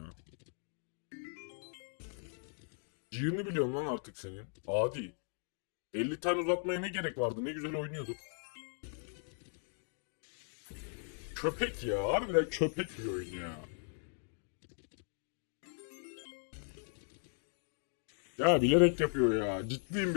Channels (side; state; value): right; silent; 53 dB below the other